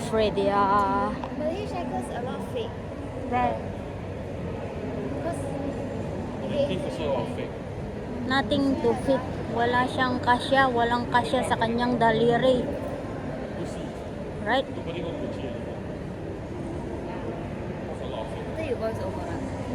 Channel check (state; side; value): identical; both; correlation 1.00